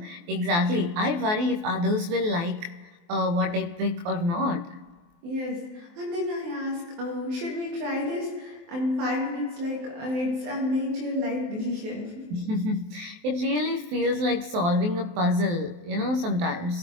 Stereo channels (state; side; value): late; left; 23 ms